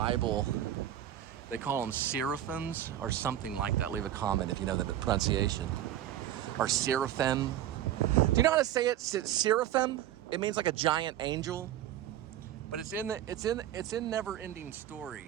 they call them seraphims or something like that. Leave a comment if you know the pronunciation. Or seraphim. Do you know how to say it? Seraphim? It means like a giant angel. But it's in Never Ending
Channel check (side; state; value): left; quieter; 12.1 dB